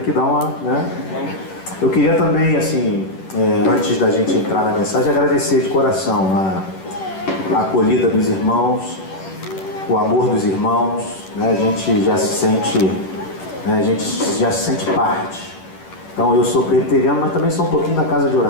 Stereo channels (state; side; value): late; right; 11 ms